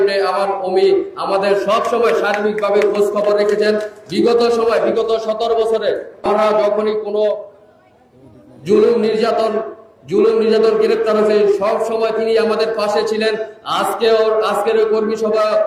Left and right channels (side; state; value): both; identical; correlation 1.00